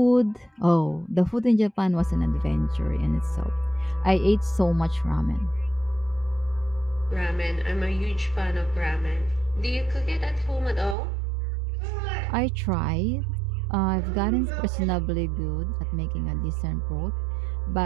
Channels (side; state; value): left; drops out; at 11.0 s